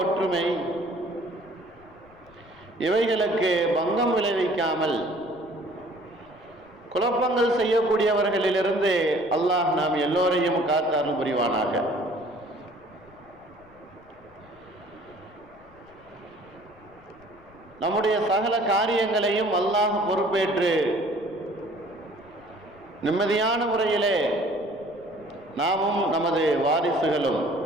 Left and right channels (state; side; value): noise; left; rumble, 27 dB below the sound